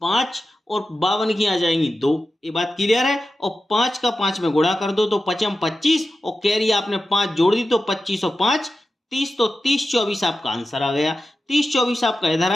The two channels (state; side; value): normal; both; correlation 0.92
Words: 5 और 52 की आ जाएंगी 2। ये बात क्लियर है। और 5 का 5 में गुणा कर दो तो 5 25 और कैरी आपने 5 जोड़ दी तो 25 और 5 30, तो 30 24 आपका आंसर आ गया। 30 24 आपका इधर